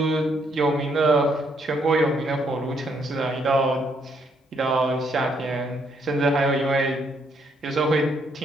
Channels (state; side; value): normal; both; correlation 0.72